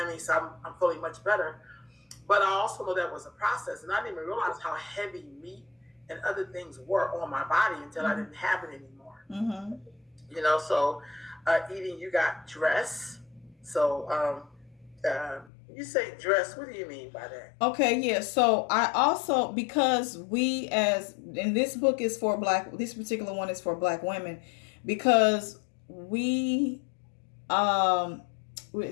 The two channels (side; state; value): right; drops out; at 15.5 s